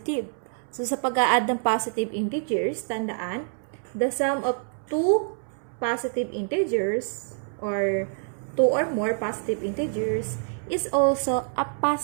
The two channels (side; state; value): left; silent; 61 dB below the other